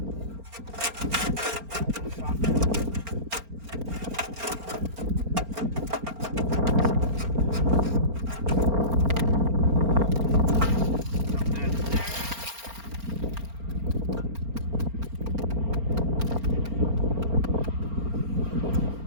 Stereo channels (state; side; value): late; left; 4.4 ms